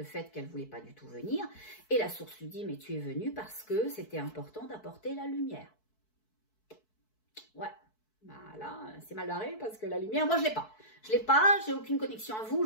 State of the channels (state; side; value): late; right; 4.6 ms